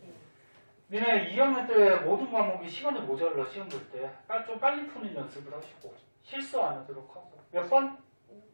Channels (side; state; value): both; inverted; correlation -1.00